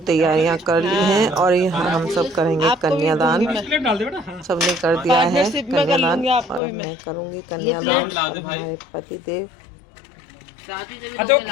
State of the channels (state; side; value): drops out; right; at 6.6 s